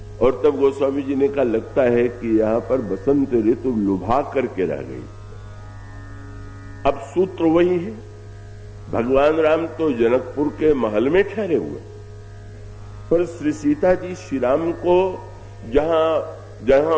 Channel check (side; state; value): both; identical; correlation 1.00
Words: और तब गोस्वामी जी ने कहा लगता है कि यहां पर बसंत ऋतु लुभा करके रह गई। अब सूत्र वही है, भगवान राम तो जनकपुर के महल में ठहरे हुए, पर श्री सीता जी श्री राम को जहां जहां